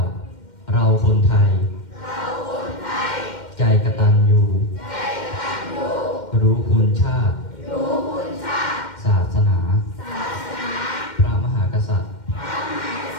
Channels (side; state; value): right; late; 2.1 ms